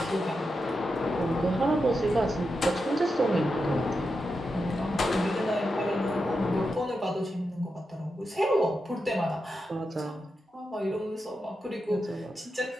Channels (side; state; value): both; normal; correlation 0.88